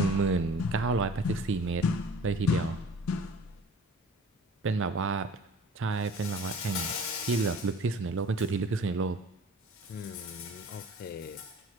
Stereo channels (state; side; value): normal; both; correlation 0.45